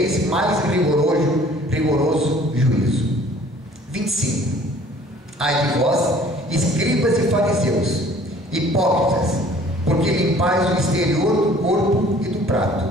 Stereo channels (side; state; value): both; normal; correlation 0.53